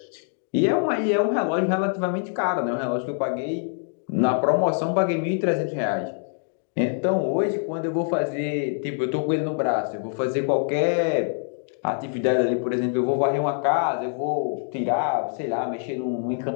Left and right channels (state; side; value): silent; right; 62 dB below the other